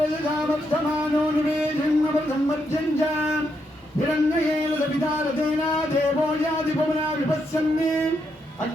நிவேதன்மர்த்தஞ்சம் हिरण्येन सवितारतेन देवो याति पवना विपश्यन्ने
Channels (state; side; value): normal; both; correlation 0.80